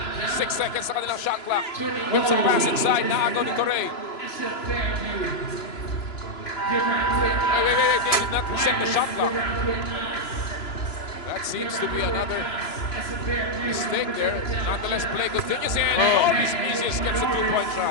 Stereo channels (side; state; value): right; late; 3.0 ms